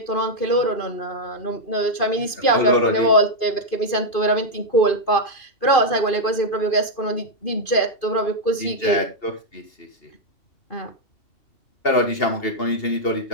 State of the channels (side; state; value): right; late; 2.5 ms